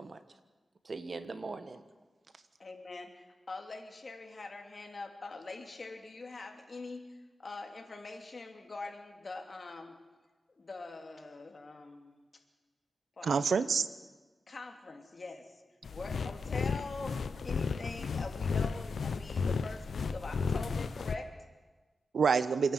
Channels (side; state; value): both; normal; correlation 0.83